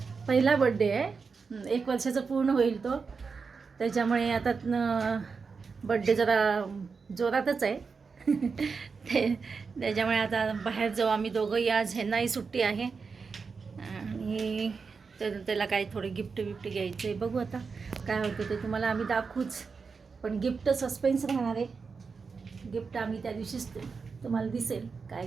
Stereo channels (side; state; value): left; quieter; 5.1 dB